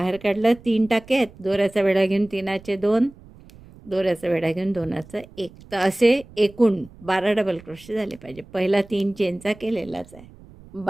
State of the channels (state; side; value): noise; right; rumble, 22 dB below the sound